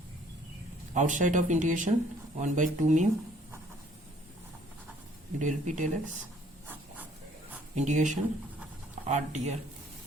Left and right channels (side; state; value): both; normal; correlation 0.59